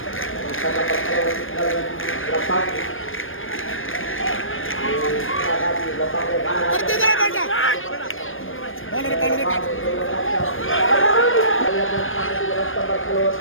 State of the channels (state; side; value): late; right; 0.59 ms